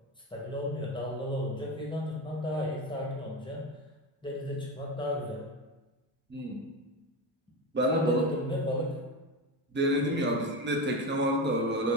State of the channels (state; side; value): normal; both; correlation 0.20